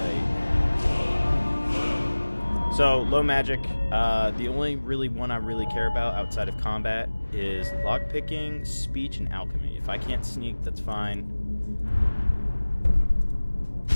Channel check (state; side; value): inverted; both; correlation -1.00